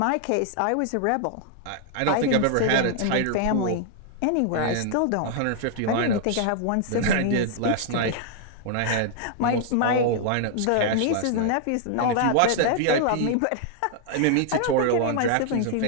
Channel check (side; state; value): both; different; correlation -0.01